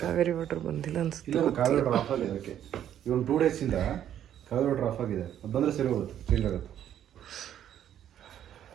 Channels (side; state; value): left; quieter; 10.6 dB